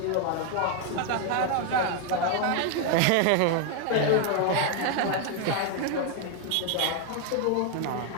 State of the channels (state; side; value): different; both; correlation 0.01